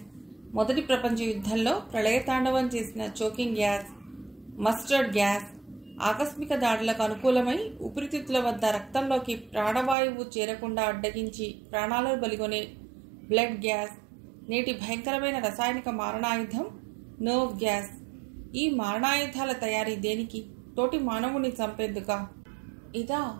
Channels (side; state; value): left; drops out; at 10.0 s